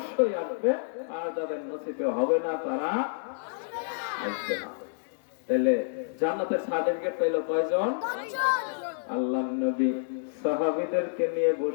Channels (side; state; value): right; silent; digital silence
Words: আসবে, আর যাদের নসিবে হবে না তারা আসবে না। তাহলে জান্নাতের সার্টিফিকেট পেল কয়জন? আল্লাহর নবী সাহাবীদেরকে নিয়ে